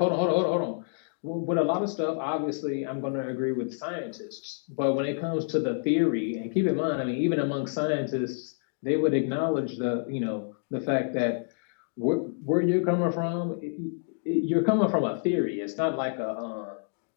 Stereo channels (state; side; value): silent; right; digital silence